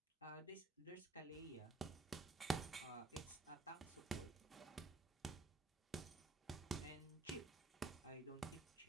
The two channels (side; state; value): left; quieter; 3.2 dB